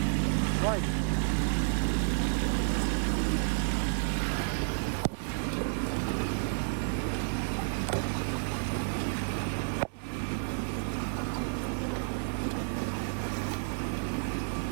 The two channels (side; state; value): left; silent; 57 dB below the other